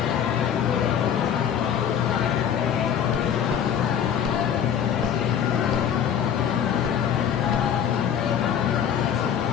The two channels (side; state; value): right; quieter; 8.7 dB